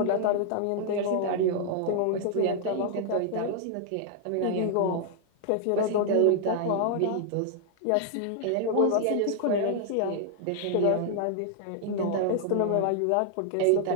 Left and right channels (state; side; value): different; both; correlation 0.00